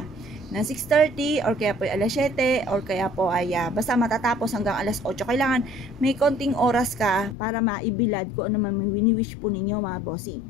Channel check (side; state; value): right; drops out; at 7.4 s